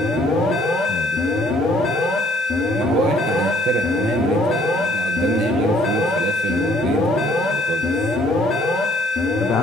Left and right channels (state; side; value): normal; both; correlation 0.62